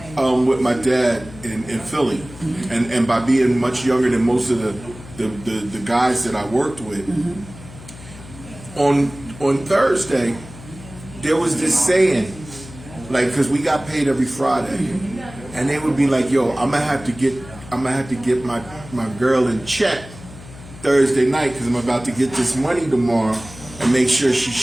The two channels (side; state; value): left; noise; hum, 17 dB below the sound